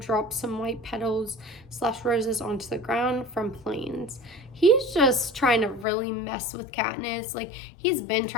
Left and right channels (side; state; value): right; drops out; at 5.9 s